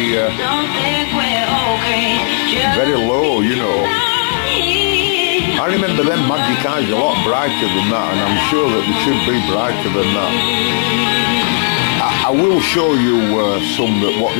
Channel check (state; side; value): silent; right; 56 dB below the other